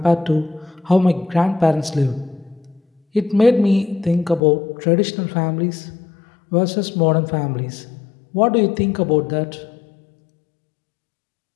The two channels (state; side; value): drops out; right; at 4.4 s